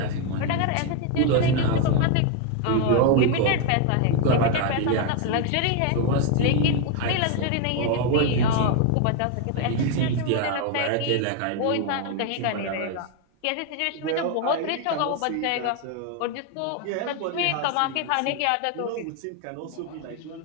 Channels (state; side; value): different; both; correlation 0.01